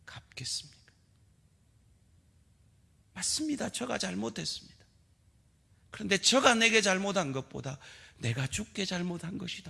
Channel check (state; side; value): identical; both; correlation 1.00